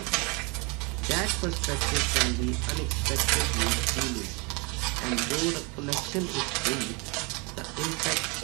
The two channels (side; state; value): left; quieter; 28.3 dB